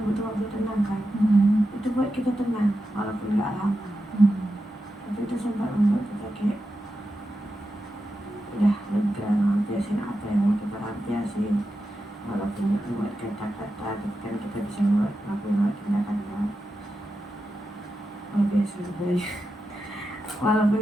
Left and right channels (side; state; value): both; normal; correlation 0.89